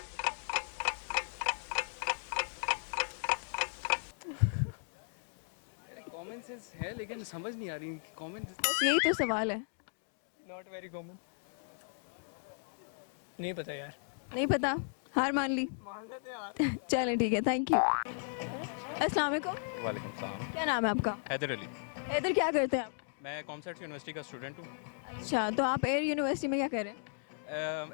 कॉमन सेंस है लेकिन समझ नहीं आ रही कॉमन बस यही तो सवाल है। Not very common. नहीं पता यार। नहीं पता, हार मान ली। मान लेते हैं यार। चलें ठीक है, थैंक यू। अस्सलाम वालेकुम, वालेकुम सलाम। क्या नाम है आपका? हैदर अली। इधर क्या करते हैं आप? मैं कॉमसर्ट यूनिवर्सिटी का स्टूडेंट हूँ। अच्छा, तो आप एयर यूनिवर्सिटी में क्या कर रहे हैं?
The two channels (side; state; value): right; silent; digital silence